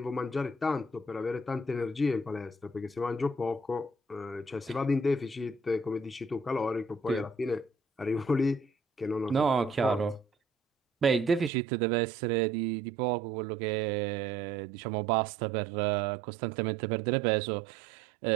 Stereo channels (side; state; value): left; drops out; at 11.5 s